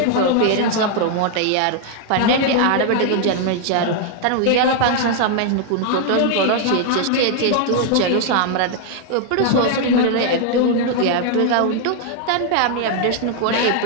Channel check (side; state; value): both; different; correlation 0.00